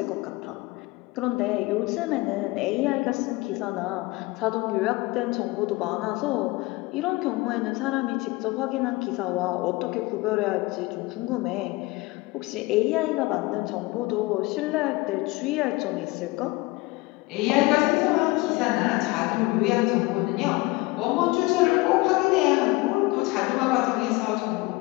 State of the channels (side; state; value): right; quieter; 22.5 dB